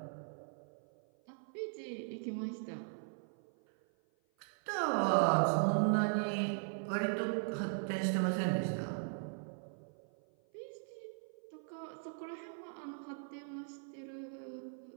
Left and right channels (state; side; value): silent; left; 52 dB below the other